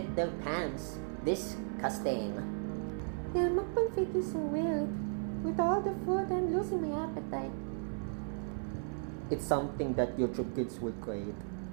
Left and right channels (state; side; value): silent; left; 54 dB below the other